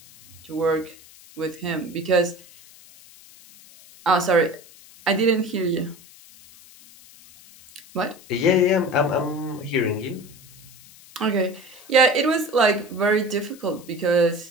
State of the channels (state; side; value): noise; left; hiss, 23 dB below the sound